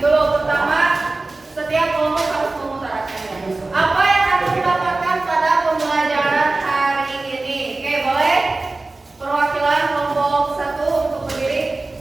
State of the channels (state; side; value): quieter; left; 3.2 dB